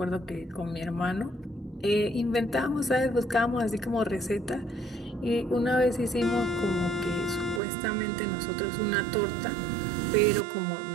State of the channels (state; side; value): drops out; left; at 7.6 s